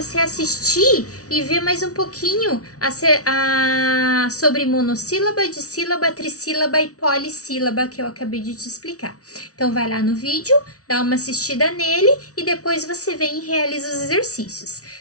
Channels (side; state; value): right; late; 0.67 ms